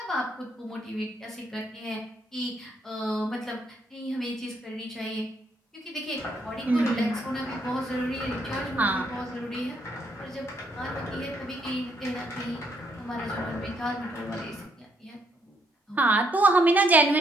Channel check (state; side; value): normal; both; correlation 0.72